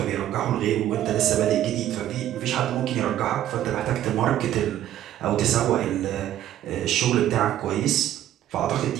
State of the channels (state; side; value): quieter; left; 12.3 dB